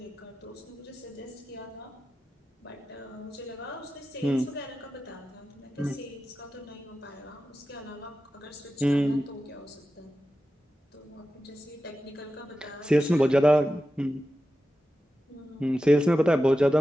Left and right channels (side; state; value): both; normal; correlation 0.92